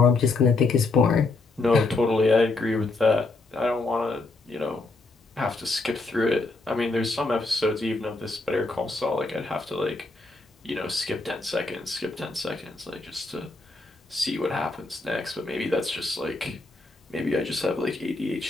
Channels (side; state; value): right; quieter; 3.3 dB